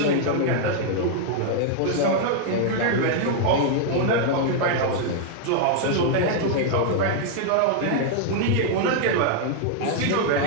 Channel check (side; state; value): both; different; correlation -0.01